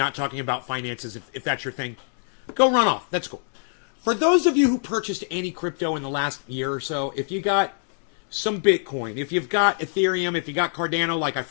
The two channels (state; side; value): silent; right; 62 dB below the other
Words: talking about finances if that's your thing. Go run off. That's cool. For those of you who purchased any crypto in the last year or so, if you got some Bitcoin, if you've got Ethereum, if you got Cardano, like I